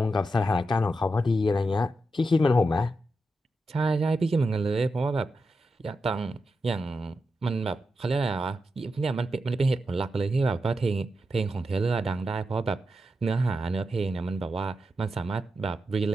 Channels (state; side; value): normal; both; correlation 0.87